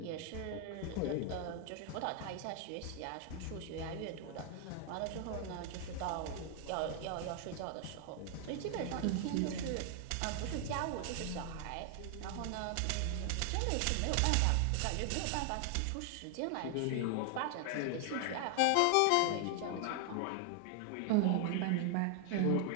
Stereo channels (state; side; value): different; both; correlation 0.00